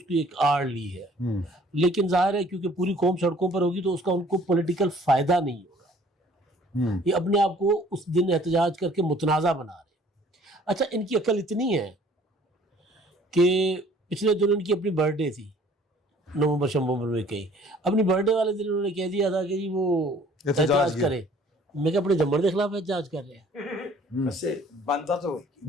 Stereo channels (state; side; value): normal; both; correlation 0.55